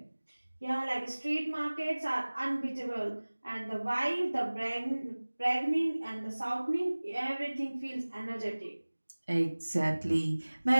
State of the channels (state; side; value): inverted; both; correlation -1.00